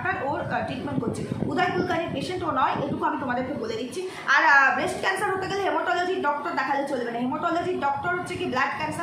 ওর ট্রিটমেন্ট করছে। উদয় কুলকার্নির পেশেন্ট ও নয়, এটুকু আমি তোমাদেরকে বলে দিচ্ছি। আর ব্রেস্ট ক্যান্সার হতে গেলে হেমাটোলজির ডক্টর দেখালে চলবে না। হেমাটোলজির ডক্টর হচ্ছে কি ব্লাড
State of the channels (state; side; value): identical; both; correlation 1.00